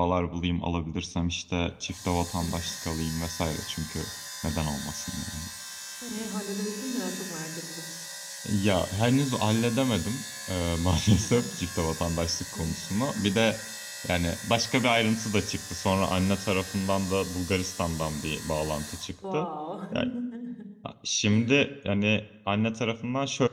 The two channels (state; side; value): identical; both; correlation 1.00